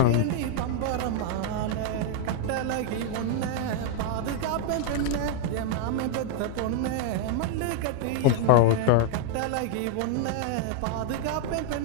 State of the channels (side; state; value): both; different; correlation -0.01